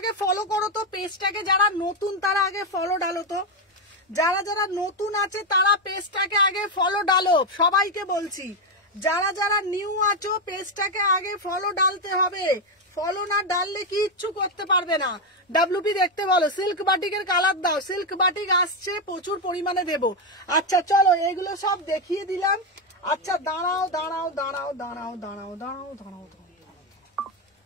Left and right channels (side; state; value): both; normal; correlation 0.06